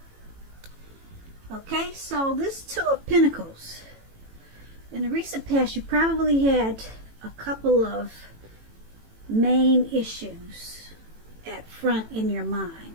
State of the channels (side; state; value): left; late; 18 ms